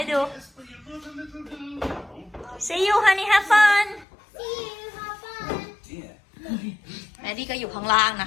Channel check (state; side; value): drops out; right; at 4.0 s